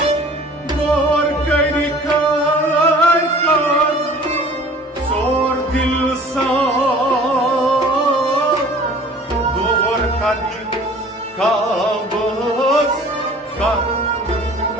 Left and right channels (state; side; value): normal; both; correlation 0.47